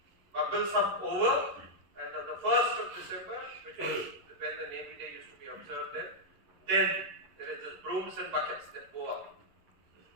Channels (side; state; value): left; late; 11 ms